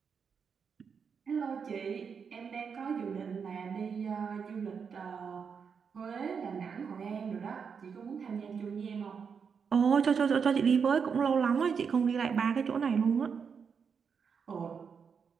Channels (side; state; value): left; quieter; 6.3 dB